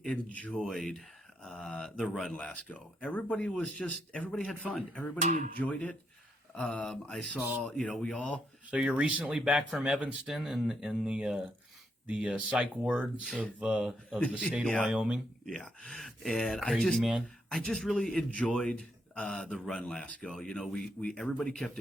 enjoyed the run last go. Everybody had fun. Everybody enjoyed it. I saw, we all. So you're recently back from Evanston in the psych wards of the state of Wyoming. Yeah, and I just really enjoyed the run last go. We everybody kept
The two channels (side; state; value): both; normal; correlation 0.78